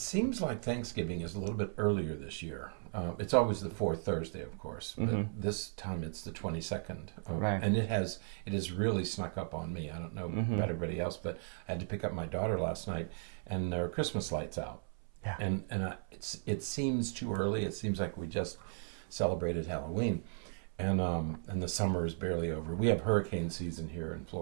like Thanksgiving is a little bit earlier this year. It's always the fourth Thursday, of course, but this time it's the 22nd, and it has really snuck up on me. I don't know about everybody else, but I had to pick up my daughter last night, and there are Christmas lights out. Yeah. And it seems too early. It seems like we just celebrated Halloween, and the summer is barely over. We have hurricane season here in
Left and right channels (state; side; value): silent; left; 54 dB below the other